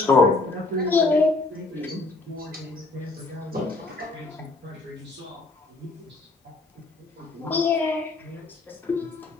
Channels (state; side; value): quieter; right; 3.3 dB